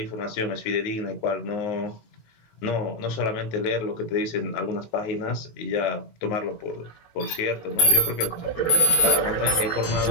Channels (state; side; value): late; right; 18 ms